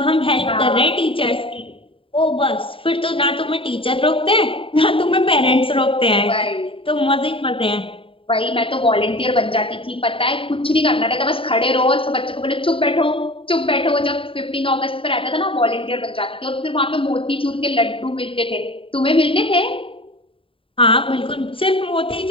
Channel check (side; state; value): right; late; 0.26 ms